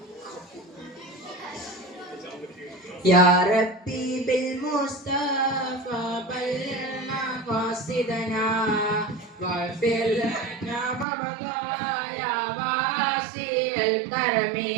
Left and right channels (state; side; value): drops out; left; at 11.1 s